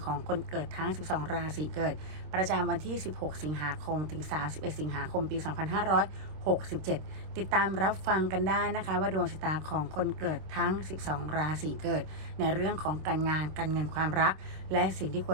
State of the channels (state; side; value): late; left; 26 ms